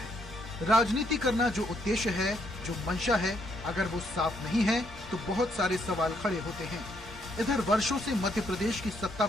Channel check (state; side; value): normal; both; correlation 0.73